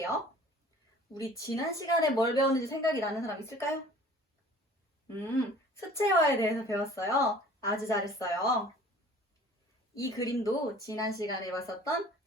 우리 지난 시간에 뭘 배웠는지 생각이 나는 사람 있을까요? 수채화에 대해서 배웠어요. 아주 잘했어요. 이 그림도 지난 시간에 봤었던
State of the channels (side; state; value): both; normal; correlation 0.48